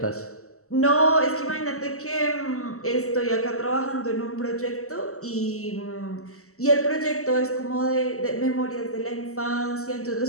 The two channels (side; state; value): right; late; 0.64 ms